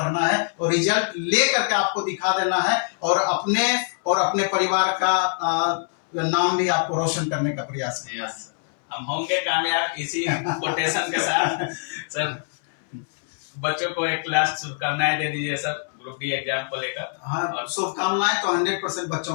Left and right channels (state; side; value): silent; right; 62 dB below the other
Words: है और रिजल्ट ले करके आपको दिखा देना है और अपने परिवार का नाम भी आपको रोशन करने का प्रयास करना है। हम होंगे कामयाब इसी कोटेशन के साथ। सर बच्चों को एक लास्ट शुभकामनाएं दे दीजिए सर ग्रुप डी एग्जाम को लेकर। हाँ, शुभकामनाएं तो 100%